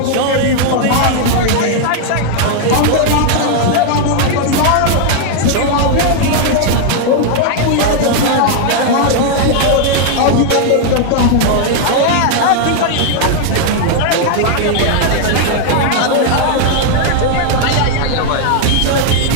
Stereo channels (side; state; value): both; different; correlation 0.00